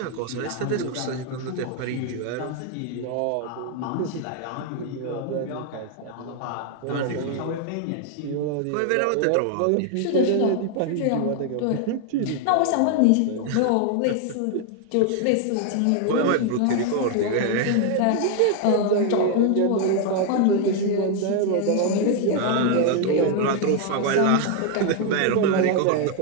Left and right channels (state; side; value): different; both; correlation 0.00